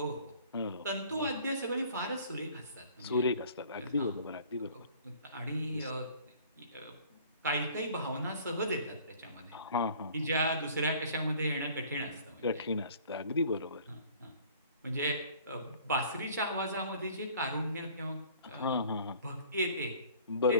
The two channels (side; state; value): both; inverted; correlation -0.51